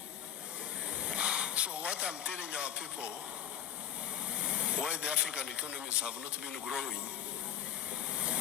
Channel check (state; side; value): quieter; right; 10.1 dB